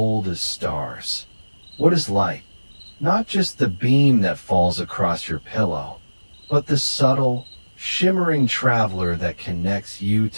as stars. What is light? Not just the beam that falls across your pillow, but the subtle, shimmering traveler that connects you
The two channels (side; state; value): both; inverted; correlation -1.00